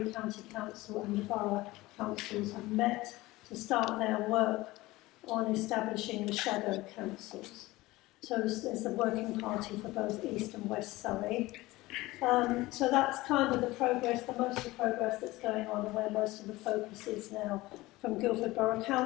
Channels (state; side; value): quieter; right; 19.4 dB